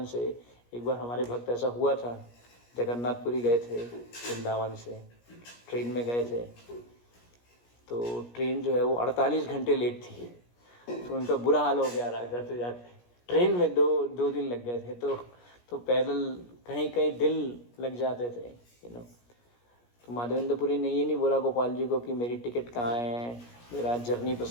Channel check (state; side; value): late; right; 17 ms